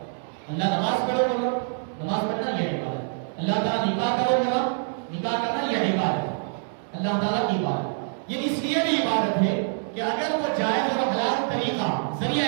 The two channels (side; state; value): left; silent; digital silence